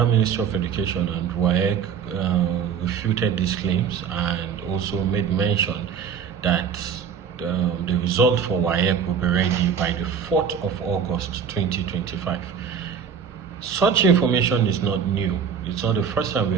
Ministry of Education and WAEC refuted these claims and also made mention that the result for WAEC will be ready by the 4th of August 2025. Such information is not new. It's not the first time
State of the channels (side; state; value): left; quieter; 7.2 dB